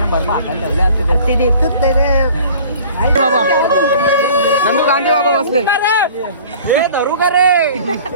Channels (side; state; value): both; inverted; correlation -0.47